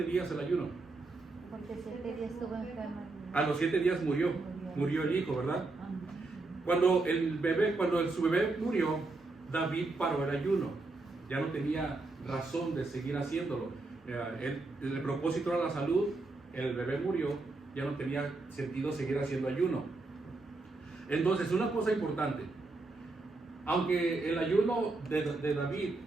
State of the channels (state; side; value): quieter; left; 3.4 dB